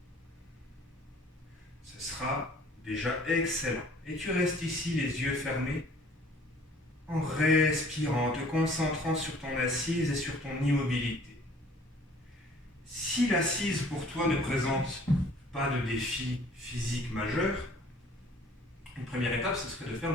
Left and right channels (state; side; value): normal; both; correlation 0.54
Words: Ce sera déjà excellent. Et tu restes ici les yeux fermés en respirant, te concentrant sur ton assise et sur ton immobilité. Si l'assise pour toi ne présente pas de défi physique majeur, une première étape, ce serait de faire